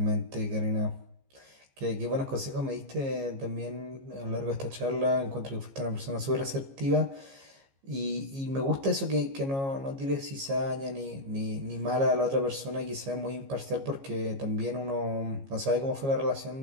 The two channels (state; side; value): late; left; 15 ms